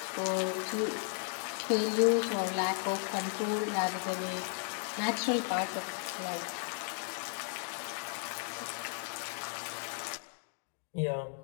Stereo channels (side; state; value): right; silent; 54 dB below the other